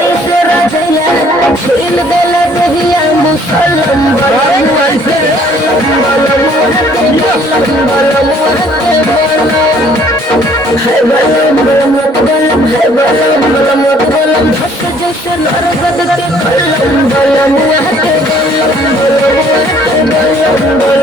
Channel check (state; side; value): normal; both; correlation 0.60